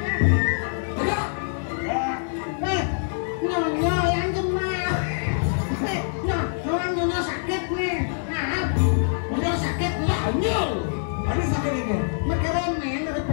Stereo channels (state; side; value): silent; right; digital silence